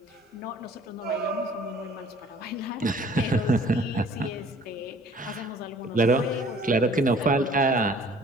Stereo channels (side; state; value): both; normal; correlation 0.53